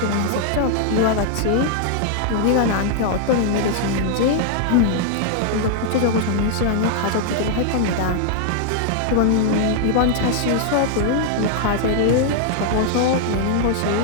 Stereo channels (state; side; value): different; both; correlation -0.01